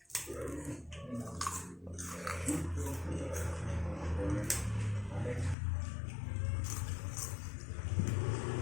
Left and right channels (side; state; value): right; drops out; at 5.6 s